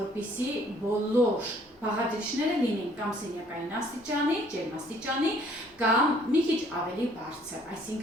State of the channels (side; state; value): both; normal; correlation 0.60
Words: բոլոր բաղադրիչները լինեն կամ սենյակային աստիճանի, ջերմաստիճանի, կամ մի քիչ ավելի բարձր,